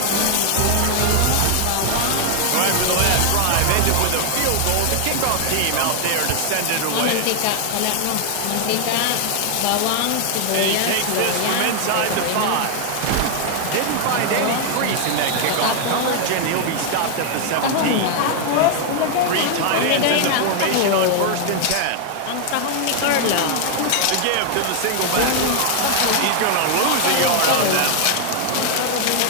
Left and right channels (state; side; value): different; both; correlation 0.00